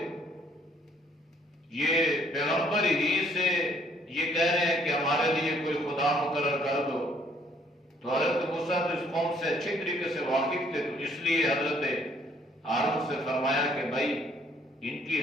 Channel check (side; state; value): both; normal; correlation 0.64